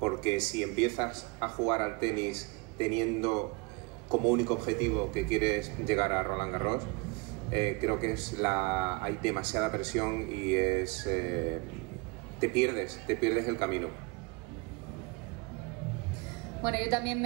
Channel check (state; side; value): quieter; left; 27.5 dB